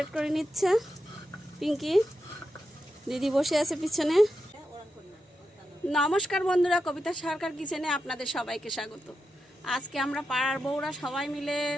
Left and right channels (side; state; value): both; normal; correlation 0.88